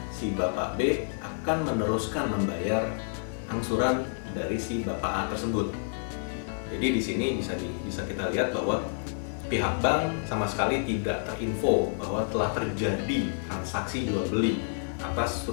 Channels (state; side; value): silent; right; 58 dB below the other